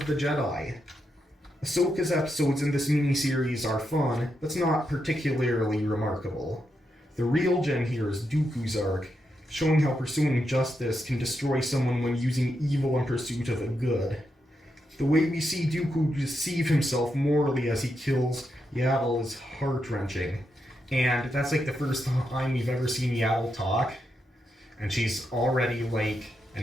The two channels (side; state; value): both; normal; correlation 0.84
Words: the Jedi. Ahsoka's episodes in this miniseries are fun, but not particularly remarkable. The real gem here is Dooku's arc, showing how pursuing justice can destroy someone when using evil in pursuit of a good. The way we see Dooku deceive himself morally as he kills Yaddle is heart-wrenching. And that's the first time we've ever seen Yaddle talk. And she's already an